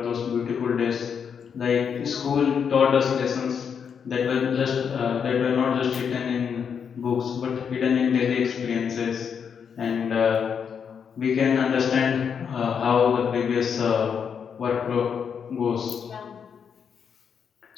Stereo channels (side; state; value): right; quieter; 7.0 dB